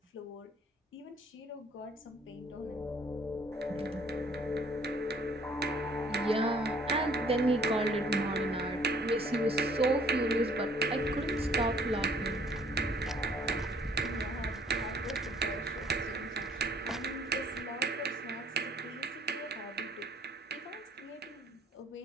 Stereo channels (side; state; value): both; normal; correlation 0.59